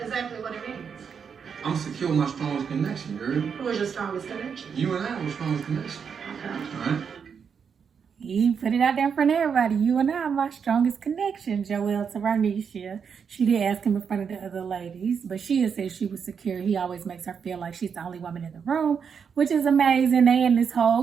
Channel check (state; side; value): quieter; left; 6.7 dB